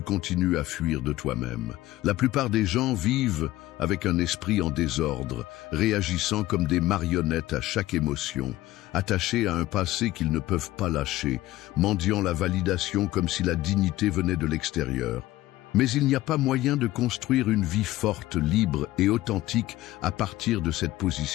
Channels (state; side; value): quieter; right; 16.4 dB